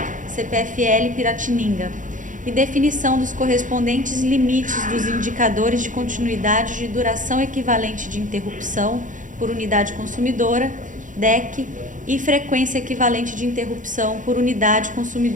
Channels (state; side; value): late; left; 0.37 ms